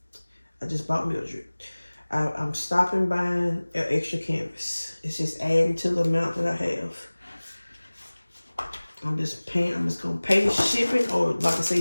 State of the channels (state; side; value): inverted; both; correlation -1.00